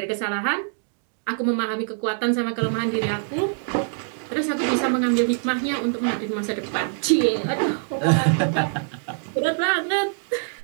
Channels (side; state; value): left; silent; digital silence